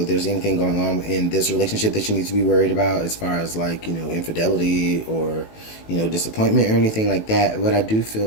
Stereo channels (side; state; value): right; late; 18 ms